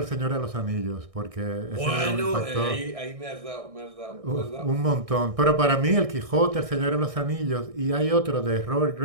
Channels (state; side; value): late; left; 1.6 ms